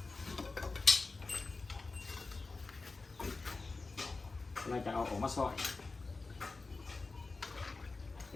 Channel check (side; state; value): right; quieter; 3.8 dB